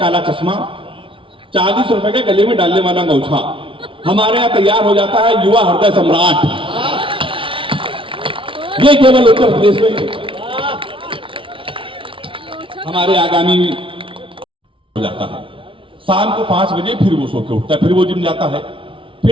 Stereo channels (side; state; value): left; late; 0.25 ms